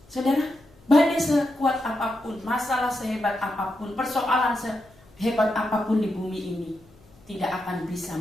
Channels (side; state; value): left; noise; hum, 28 dB below the sound